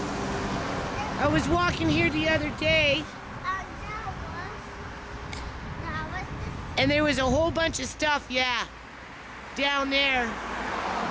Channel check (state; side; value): identical; both; correlation 1.00